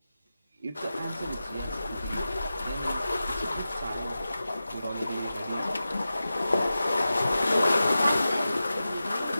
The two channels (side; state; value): both; inverted; correlation -0.93